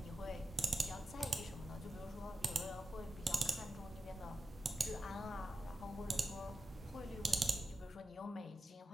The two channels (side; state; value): both; normal; correlation 0.90